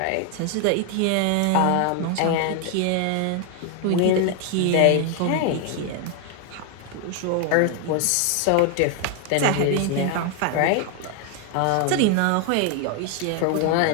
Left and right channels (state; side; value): different; both; correlation 0.00